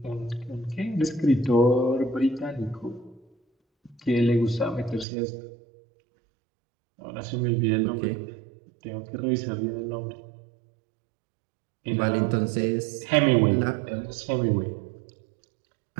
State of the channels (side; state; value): left; drops out; at 5.1 s